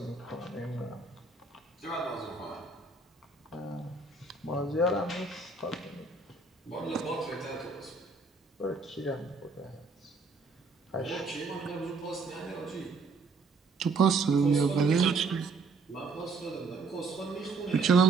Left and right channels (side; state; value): left; quieter; 4.1 dB